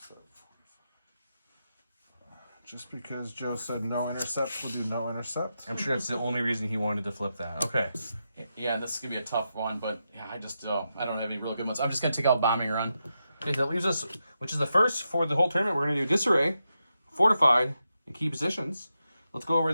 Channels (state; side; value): inverted; both; correlation -0.87